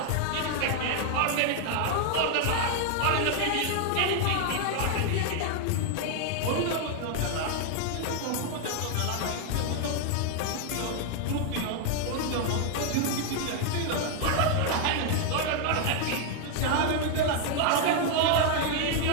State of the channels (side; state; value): both; different; correlation 0.00